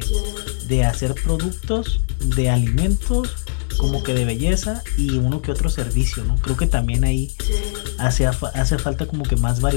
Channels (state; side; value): silent; right; digital silence